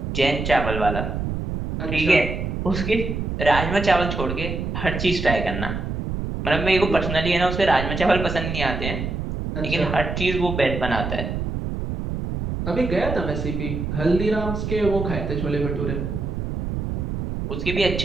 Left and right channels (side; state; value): right; noise; rumble, 4 dB below the sound